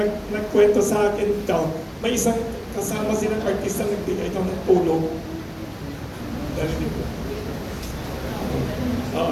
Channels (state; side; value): identical; both; correlation 1.00